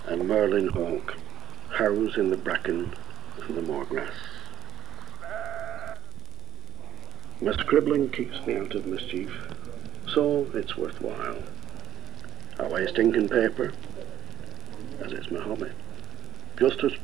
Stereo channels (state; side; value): quieter; left; 11.9 dB